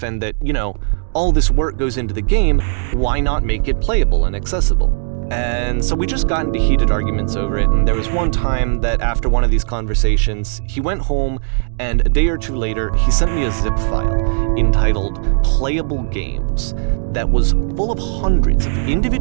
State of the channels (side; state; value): left; silent; digital silence